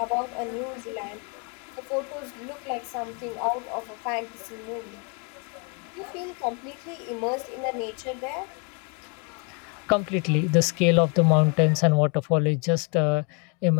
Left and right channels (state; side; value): quieter; right; 35.1 dB